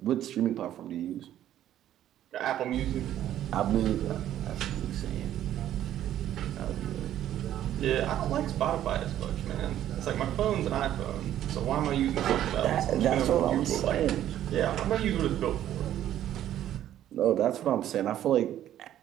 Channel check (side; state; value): left; quieter; 11.9 dB